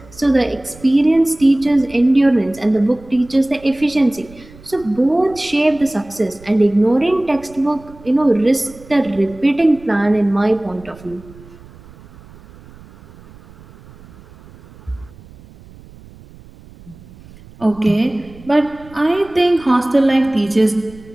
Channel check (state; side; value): noise; right; rumble, 22 dB below the sound